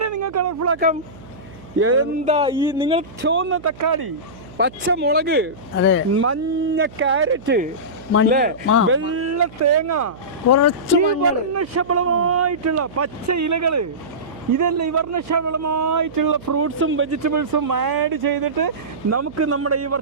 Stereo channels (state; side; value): noise; right; hum, 20 dB below the sound